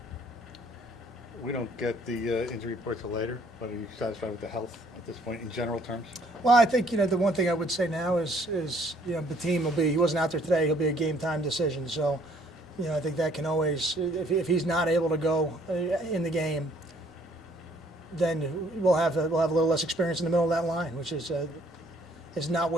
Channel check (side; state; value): both; normal; correlation 0.62